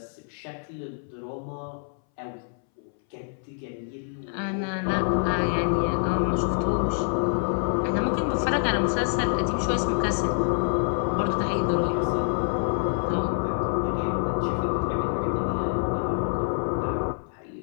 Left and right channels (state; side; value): silent; right; 61 dB below the other